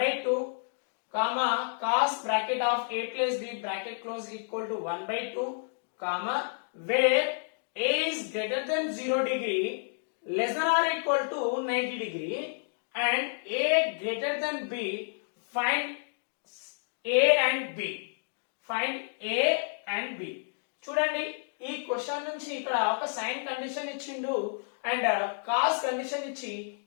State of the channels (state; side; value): silent; right; digital silence